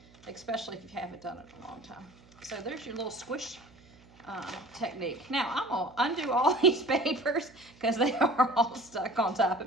especially if you haven't done it in a long time. So there's your little squish technique. Now I'm gonna undo all these papers because they are all stuck on top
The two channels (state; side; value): noise; right; hum, 26 dB below the sound